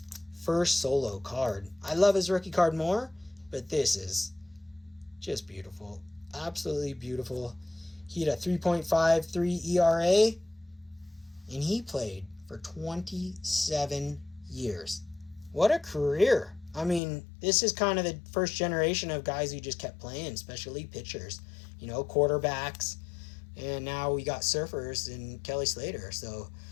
first solo card. I love his rookie card more, but this is just beautiful. Absolutely beautiful. He had a 3.53 ERA, and he played for 27 years. What a career. I mean, this is kind of the first generation of guys who just kept playing, especially pitchers, quarterbacks, and now we got surfers and Kelly Slater. So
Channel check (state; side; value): drops out; right; at 17.0 s